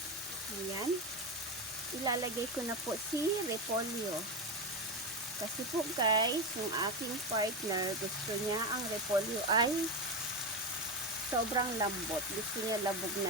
Ayan. Ilalagay ko na po si repolyo. Kasi po guys, yung aking partner, gusto niya ang repolyo ay sobrang lambot. Gusto niya labog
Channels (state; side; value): normal; both; correlation 0.15